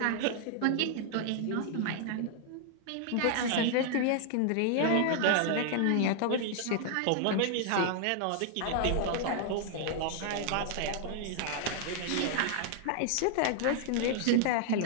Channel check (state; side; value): different; both; correlation 0.00